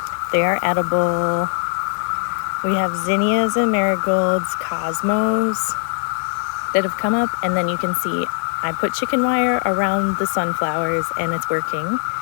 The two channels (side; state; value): right; silent; 63 dB below the other